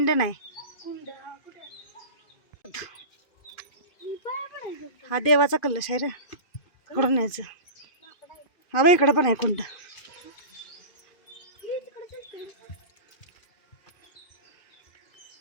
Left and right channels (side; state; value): right; late; 2.5 ms